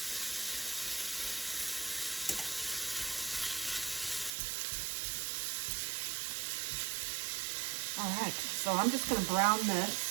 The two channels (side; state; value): left; drops out; at 4.3 s